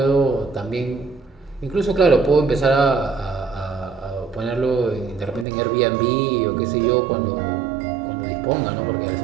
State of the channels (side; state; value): left; drops out; at 5.5 s